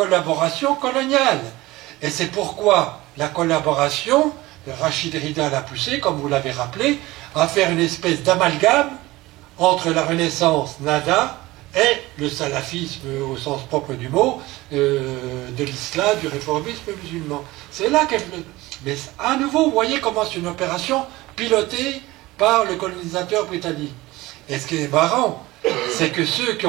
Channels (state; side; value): quieter; left; 19.3 dB